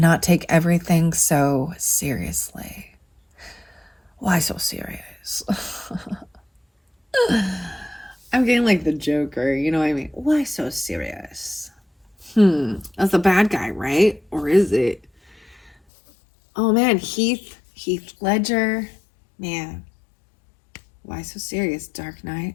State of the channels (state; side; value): drops out; right; at 15.8 s